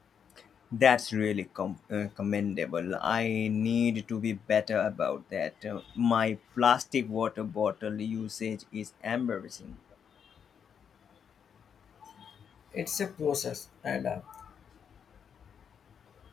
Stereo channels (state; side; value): quieter; right; 7.5 dB